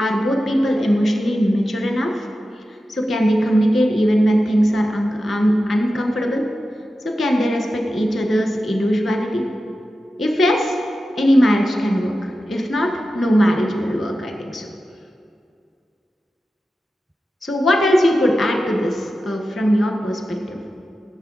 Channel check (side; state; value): both; normal; correlation 0.92